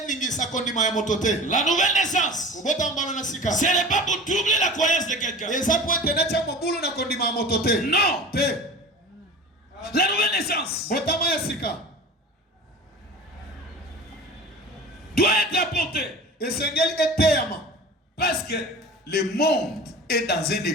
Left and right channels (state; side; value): normal; both; correlation 0.36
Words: La nouvelle naissance, ce n'est pas pour troubler la croyance de quelqu'un. Non. La nouvelle naissance doit être apportée. Parce que le monde est dans un